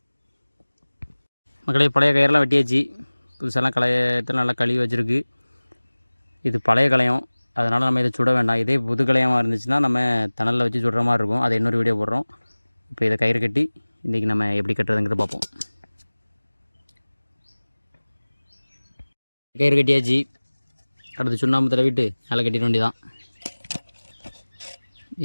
மக்களே, பழைய கயிறெல்லாம் வெட்டியாச்சு. புதுசெல்லாம் களையத்தில் நல்லா கழுவி வச்சுருக்கு. இது பழைய களையம், அதனால் நம்ம இதை சுட வேண்டாம். இதே புது களையமாக இருந்துச்சுன்னா நம்ம தணலில் வச்சு சுடுற மாதிரி இருக்கும். அதை இன்னொரு வீடியோ போடுறோம். இப்போ இதை கயிறு கட்டி இன்றைக்கி நம்ம எப்படி கட்டுறதுங்கிறத பார்ப்போம். கயிறு கட்டியாச்சு. அடுத்து சுண்ணாம்பு தடவிட்டு நல்லா கட்டிட வேண்டியதான்.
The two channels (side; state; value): both; inverted; correlation -1.00